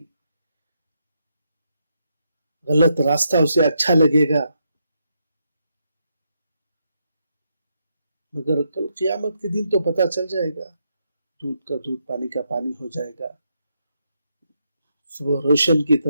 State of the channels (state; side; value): inverted; both; correlation -0.80